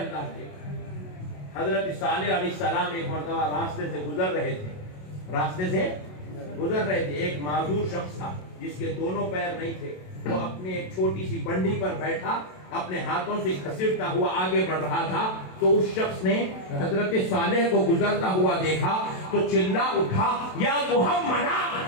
کے حضرت صالح علیہ السلام ایک مرتبہ راستے سے گزر رہے تھے ایک معذور شخص تھا جس کے دونوں پیر نہیں تھے وہ اپنے ایک چھوٹی سی بنڈی پر بیٹھا اپنے ہاتھوں سے گھسیٹتا ہوا آگے بڑھ رہا تھا تو اس شخص نے حضرت صالح کو گزرتا ہوا دیکھا تو چلا اٹھا یا محمدہ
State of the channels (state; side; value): late; right; 27 ms